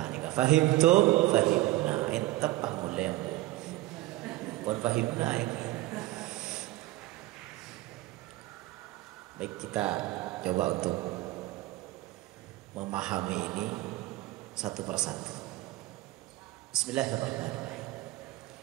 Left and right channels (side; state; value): left; quieter; 17.7 dB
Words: nika fahimtum fahimna entep pangulem pun fahimna iki. Baik, kita coba untuk memahami ini satu persatu. Bismillahirrahmanirrahim.